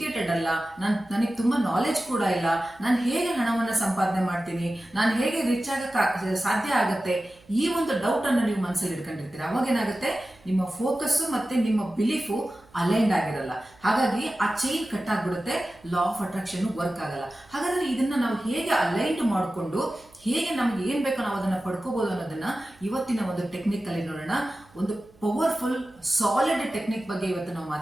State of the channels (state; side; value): noise; right; hum, 29 dB below the sound